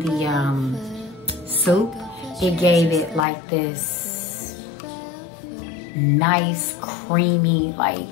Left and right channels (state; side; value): drops out; right; at 3.2 s